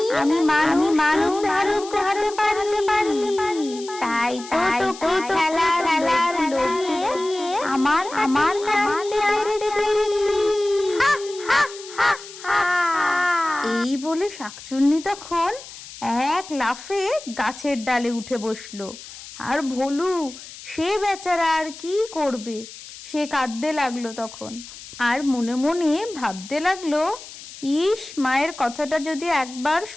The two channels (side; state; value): left; noise; hiss, 15 dB below the sound